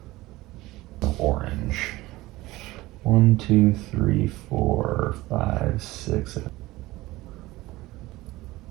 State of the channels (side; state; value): left; quieter; 18.7 dB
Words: Orange. 1, 2, 3, 4, 5, 6, 7.